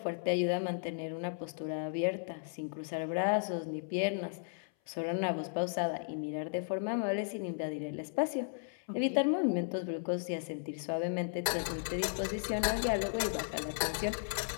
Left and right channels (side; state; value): right; silent; 54 dB below the other